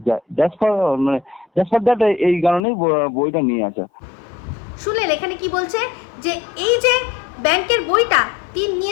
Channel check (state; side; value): drops out; right; at 2.6 s